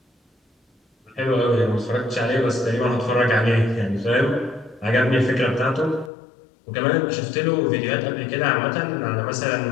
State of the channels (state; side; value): drops out; right; at 6.1 s